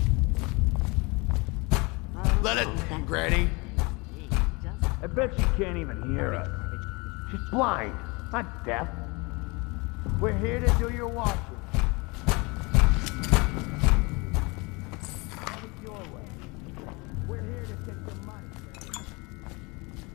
Let it, Granny. I bet she can't even hear us. She's blind, not deaf. We're here to do your washing. Have it your way. We're here to take your money.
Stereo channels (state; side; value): quieter; right; 27.2 dB